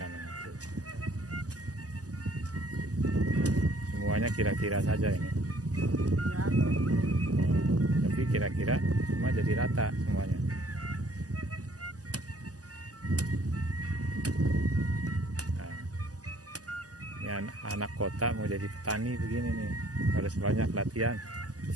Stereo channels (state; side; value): late; left; 0.67 ms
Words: itu. Semuanya kira-kira saja ini. Tapi kira-kira semua jadi rata semuanya. Nah, ini anak kota mau jadi petani begini nih, harus banyak latihan.